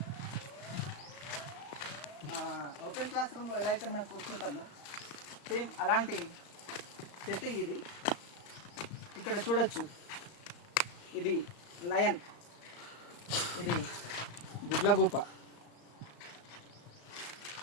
ఓపెన్ క్లాస్ రూమ్లో ఎలా అయితే మనం కూర్చుంటామో సేమ్ అలాంటి సెట్టింగ్ ఇది. ఇక్కడ చూడొచ్చు, ఇది లయన్, ఇది గుడ్లగూప.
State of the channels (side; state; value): right; late; 35 ms